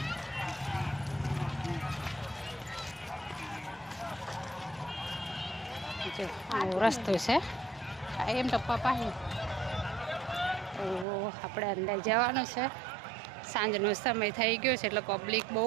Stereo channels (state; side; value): drops out; left; at 11.1 s